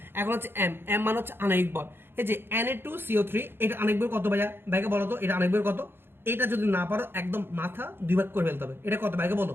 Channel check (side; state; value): left; late; 0.11 ms